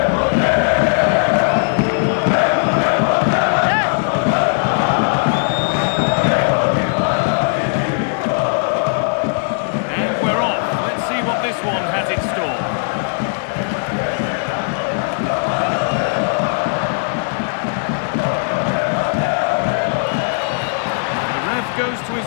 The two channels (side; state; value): right; silent; 64 dB below the other